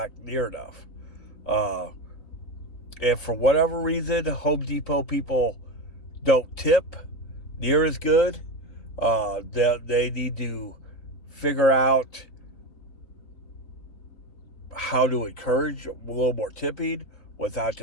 near enough. And for whatever reason, Home Depot people don't tip near as good. They need to figure out how to encourage a little more tipping without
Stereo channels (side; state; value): right; late; 3.9 ms